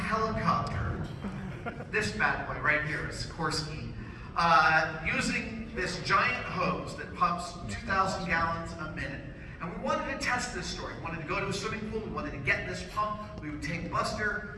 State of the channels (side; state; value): both; identical; correlation 1.00